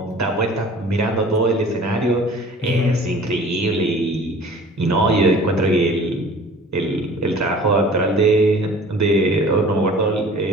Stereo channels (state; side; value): normal; both; correlation 0.46